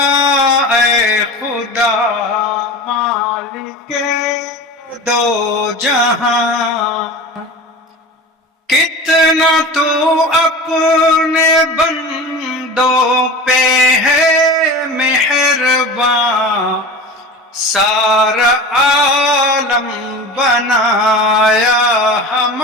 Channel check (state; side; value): normal; both; correlation 0.33